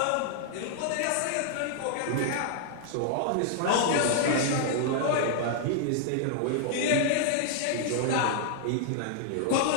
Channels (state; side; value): different; both; correlation -0.01